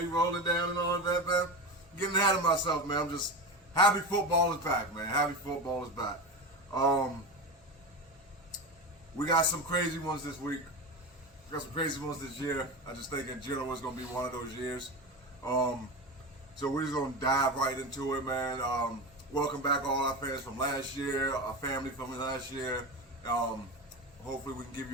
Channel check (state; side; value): normal; both; correlation 0.22